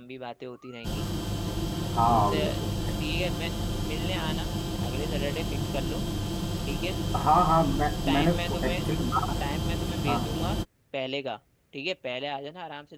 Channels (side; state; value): both; identical; correlation 1.00